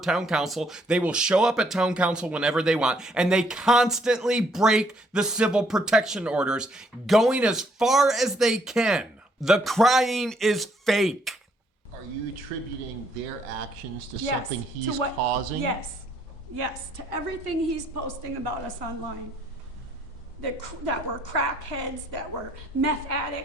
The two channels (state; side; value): normal; both; correlation 0.68